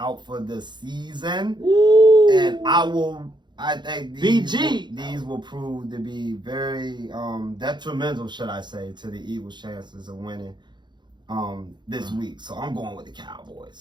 for the season. Ooh. And I think these will prove to be very detrimental, should I say, to the Eagles' chances of winning this week. So I'm going with the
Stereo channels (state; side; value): late; left; 0.22 ms